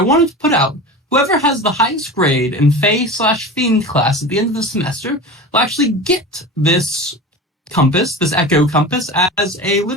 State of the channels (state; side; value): normal; both; correlation 0.31